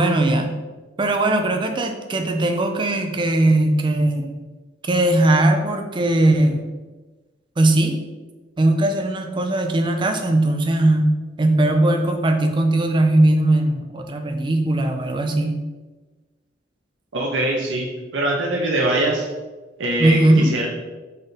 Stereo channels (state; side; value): normal; both; correlation 0.76